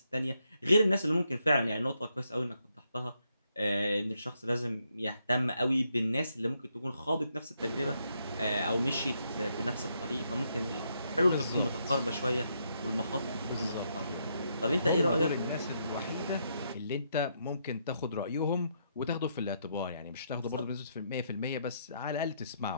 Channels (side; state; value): both; inverted; correlation -0.77